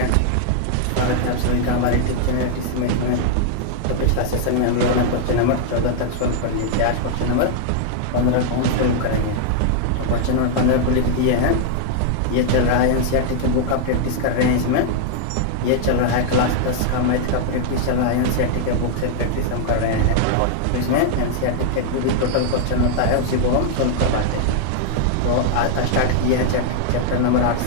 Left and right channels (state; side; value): different; both; correlation -0.01